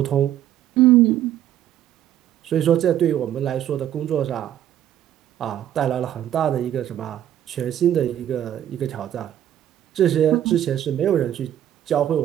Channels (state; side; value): quieter; left; 11.4 dB